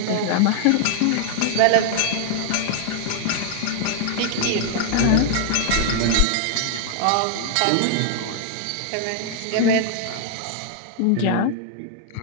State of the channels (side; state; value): both; different; correlation 0.00